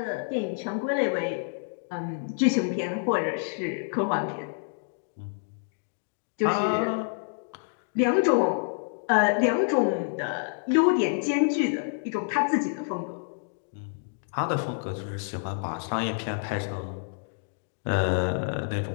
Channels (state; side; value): silent; right; digital silence